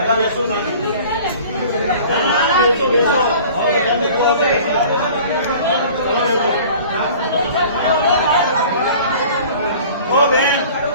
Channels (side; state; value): both; inverted; correlation -0.45